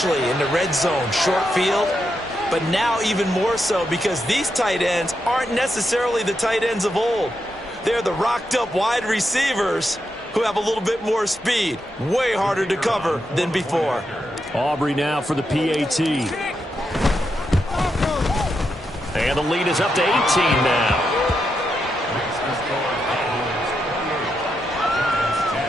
in the red zone, short field. But now even more so because these tight ends aren't necessarily the tight ends of old. They're the rocked-up wide receivers who have a little bit more speed. Way harder to cover than before. Aubrey now for the PAT. And the lead is up to 18 now.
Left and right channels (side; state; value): both; normal; correlation 0.84